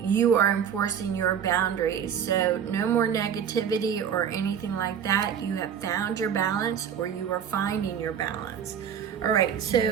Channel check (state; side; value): quieter; left; 8.2 dB